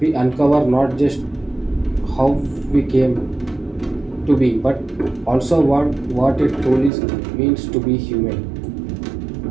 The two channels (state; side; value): drops out; left; at 6.9 s